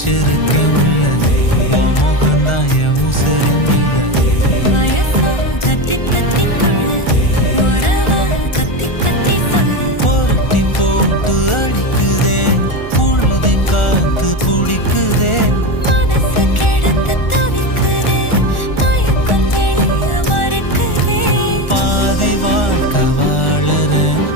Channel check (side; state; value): right; late; 1.4 ms